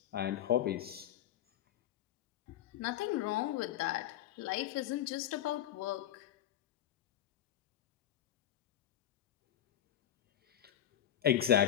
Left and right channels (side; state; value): right; quieter; 11.5 dB